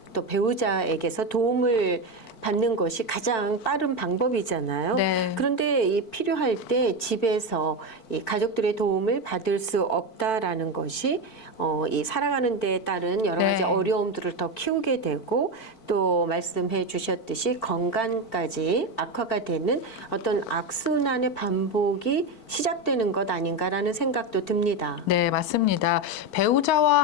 또 배우자에게서 도움을 받는 것이 가장 빠른 방법이잖아요. 네. 그런데 이 필요할 때 집에서 이 가족들의 도움을 받을 수 없다라는 것이 이 살아가는 데에 따른 여러 가지 네. 어려움들을 더 키우게 되고 또 말씀해 주셨듯이 건강까지 악화가 되는 어떤 악순환의 반복이 시작되는 것 아닌가라는 생각도 듭니다. 네, 맞습니다. 배우자와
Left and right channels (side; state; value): right; late; 4.5 ms